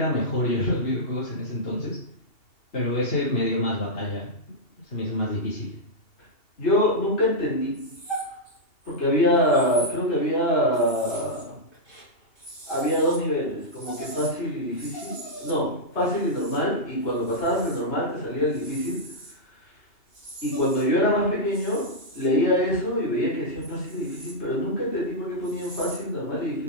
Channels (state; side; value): late; right; 2.8 ms